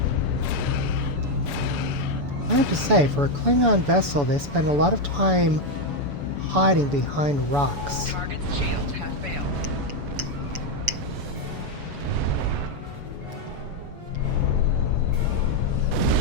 I have to say, for a Klingon vessel, they spend a lot of time hiding behind rocks. Target's shields have failed.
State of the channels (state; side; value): late; left; 7.0 ms